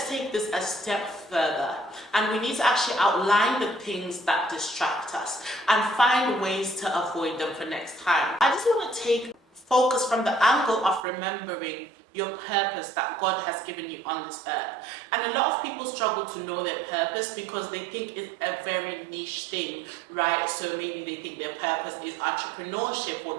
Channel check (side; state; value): left; drops out; at 11.1 s